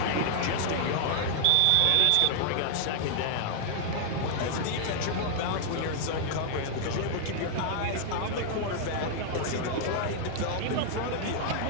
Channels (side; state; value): both; different; correlation -0.01